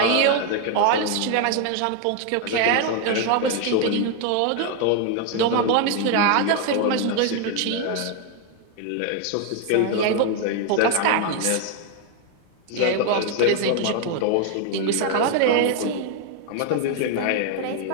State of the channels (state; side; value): different; both; correlation 0.01